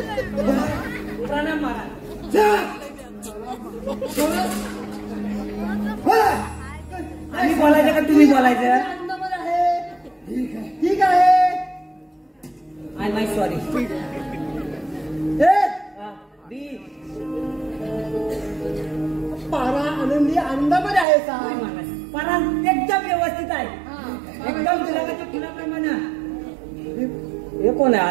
प्रणाम महाराज. आम्ही बोलायचं का तुम्ही बोलायचं? ठीक आहे. I my sorry. पारा आनंदी आनंदामध्ये आहे सा. पारा एकदम व्यवस्थित आहे, एकदम गुलाबाच्या फुलाप्रमाणे. हे कोण आहे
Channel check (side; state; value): left; drops out; at 21.1 s